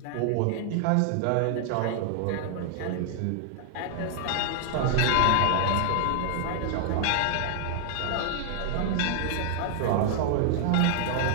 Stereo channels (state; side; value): different; both; correlation -0.01